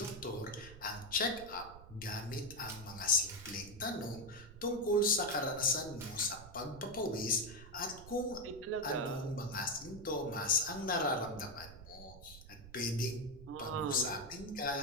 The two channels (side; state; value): right; noise; rumble, 16 dB below the sound